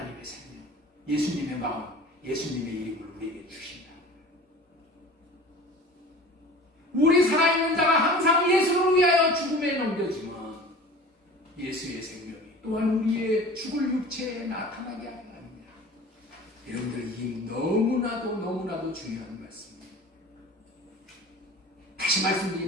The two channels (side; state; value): both; normal; correlation 0.41